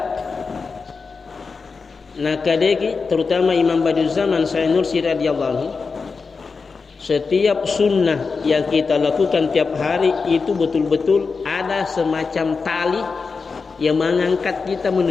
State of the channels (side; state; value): right; quieter; 4.8 dB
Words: nakadeki terutama Imam Badiul Zaman Sayyid Nursi radhiyallahu anhu, setiap sunnah yang kita lakukan tiap hari itu betul-betul ada semacam tali yang mengangkat kita